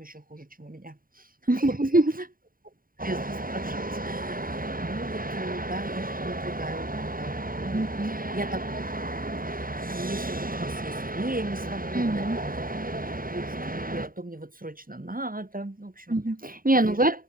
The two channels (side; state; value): left; late; 0.41 ms